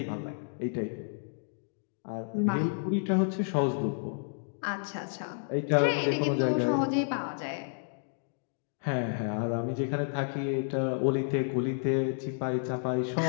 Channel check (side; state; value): right; silent; digital silence